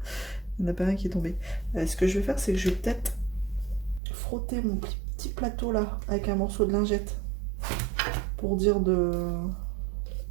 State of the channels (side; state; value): left; drops out; at 4.0 s